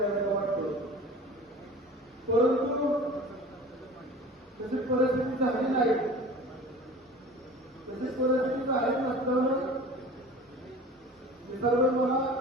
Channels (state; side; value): normal; both; correlation 0.41